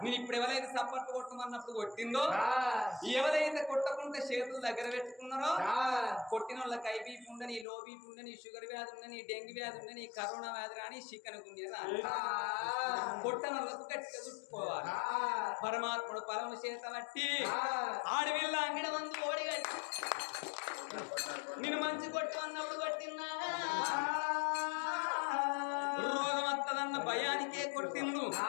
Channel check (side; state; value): right; drops out; at 7.7 s